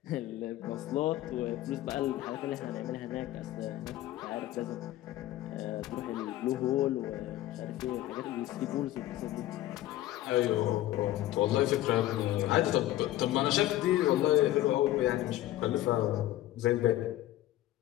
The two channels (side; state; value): right; quieter; 14.6 dB